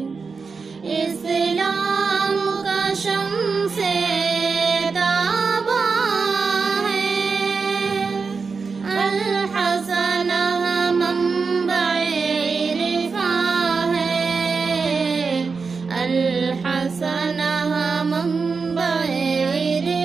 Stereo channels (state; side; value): quieter; left; 4.9 dB